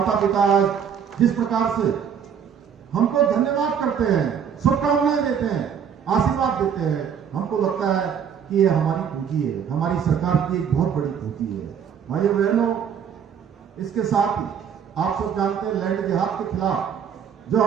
पिता जिस प्रकार से हमको धन्यवाद करते हैं, शुभकामनाएं देते हैं, आशीर्वाद देते हैं, हमको लगता है कि ये हमारी पूंजी है, हमारी सरकार की एक बहुत बड़ी पूंजी है। भाइयों बहनों, इसके साथ ही आप सब जानते हैं लैंड जिहाद के खिलाफ जो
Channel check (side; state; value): left; quieter; 7.8 dB